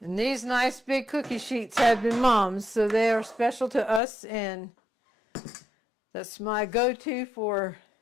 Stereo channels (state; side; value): drops out; right; at 4.0 s